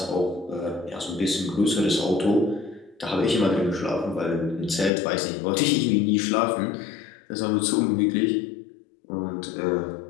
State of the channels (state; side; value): drops out; right; at 4.9 s